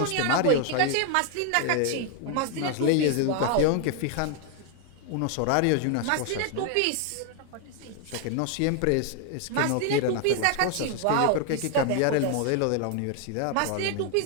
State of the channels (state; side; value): different; both; correlation 0.00